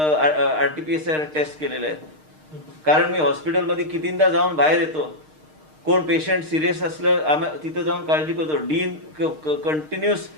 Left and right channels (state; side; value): late; left; 6.5 ms